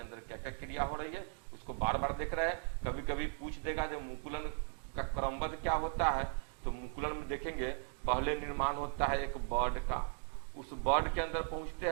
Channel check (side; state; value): left; silent; 53 dB below the other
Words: अंदर क्या क्या क्रिया हो रही है उसको बार बार देख रहे हैं। कभी कभी पूछ देगा जब मुकुलन का क्रमबद्ध क्या होता है, तो मुकुलन में देखेंगे पहले निर्माण होता है एक बर्ड का, उस बर्ड के अंदर पहुंचते